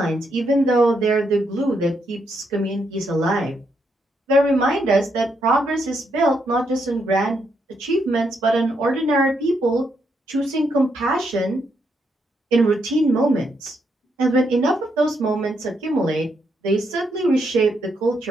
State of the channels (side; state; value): both; normal; correlation 0.78